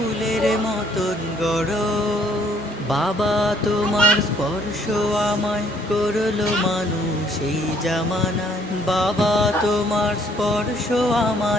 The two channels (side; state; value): both; normal; correlation 0.64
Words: মতন গড়। বাবা তোমার স্পর্শ আমায় করলো মানুষ এই জামানায়, বাবা তোমার স্পর্শ